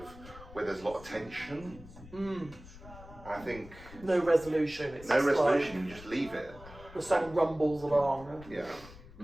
where there's a lot of tension. I think No resolution. It's no just resolution, you just leave it. Like, the song rumbles along. Yeah.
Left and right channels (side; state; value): left; noise; rumble, 18 dB below the sound